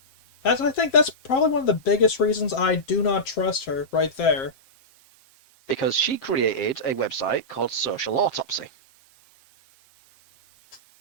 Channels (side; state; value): right; late; 7.5 ms